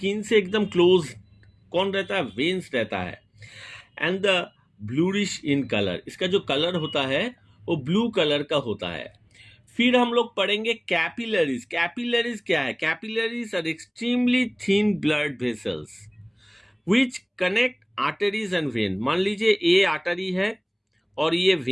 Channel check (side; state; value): both; identical; correlation 1.00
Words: से एकदम क्लोज कौन रहता है? वेन्स रहता है। And the bluish in colour, इसका जो कलर होता है वो ब्लू कलर का होता है। फिर हम लोग पढ़ेंगे कैपिलरीज। कैपिलरीज क्या है? Capillaries are extremely thin blood vessels which connect arteries and vein. मान लीजिए ये आर्टरी है और ये